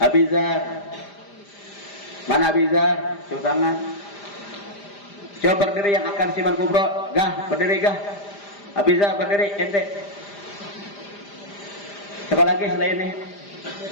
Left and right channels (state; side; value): late; right; 5.0 ms